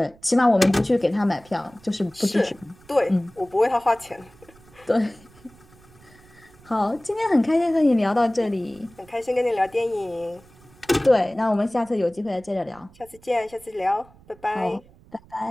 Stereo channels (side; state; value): right; noise; rumble, 26 dB below the sound